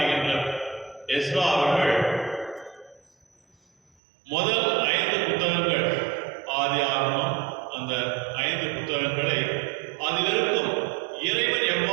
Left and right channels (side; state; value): left; drops out; at 4.0 s